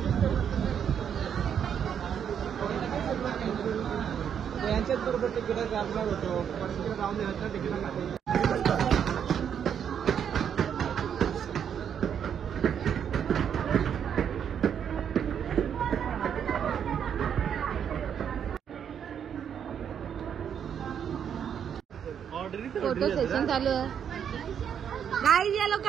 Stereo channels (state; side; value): quieter; left; 8.3 dB